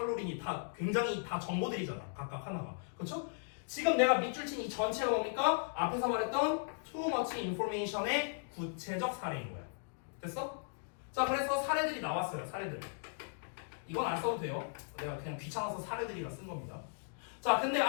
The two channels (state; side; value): silent; right; digital silence